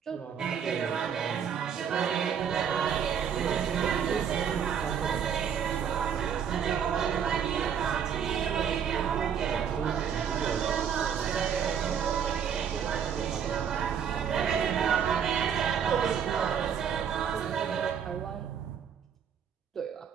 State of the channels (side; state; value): left; quieter; 7.9 dB